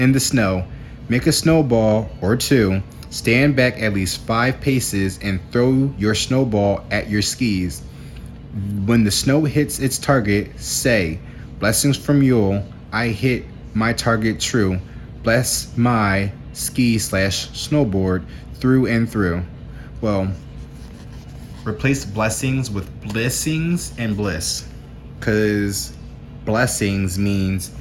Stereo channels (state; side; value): identical; both; correlation 1.00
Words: the snow. Make a snowball or two. Stand back at least 5 paces and throw your snowball at your skis. When the snow hits its target, say, blessings from Yule, I hit my target true. Bless my ski/snowboard through and through. Well, replace blessings with blessings and bliss. Because blessings means,